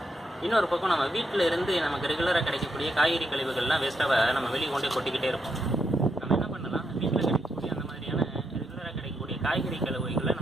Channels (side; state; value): both; normal; correlation 0.80